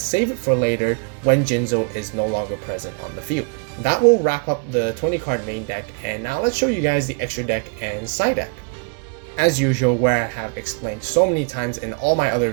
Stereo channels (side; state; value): left; quieter; 37.2 dB